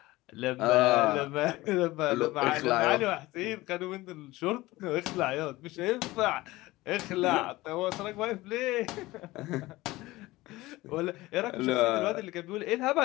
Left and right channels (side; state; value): right; quieter; 19.0 dB